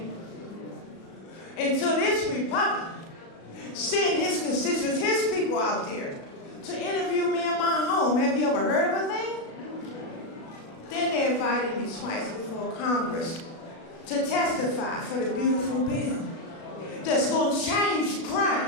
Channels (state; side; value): late; right; 36 ms